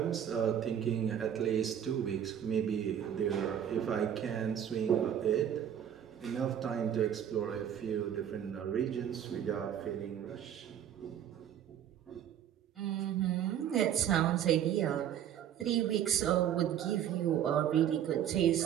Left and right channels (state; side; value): quieter; left; 9.7 dB